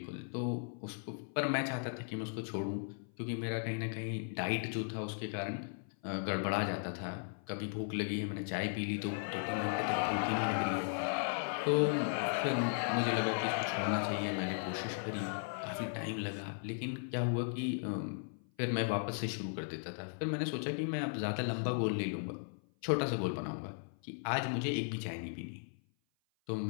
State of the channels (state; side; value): silent; right; 53 dB below the other